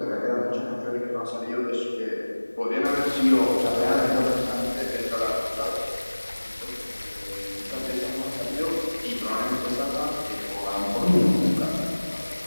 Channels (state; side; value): inverted; both; correlation -1.00